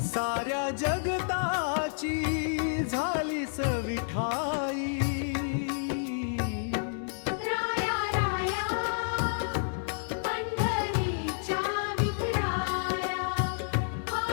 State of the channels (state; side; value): silent; right; digital silence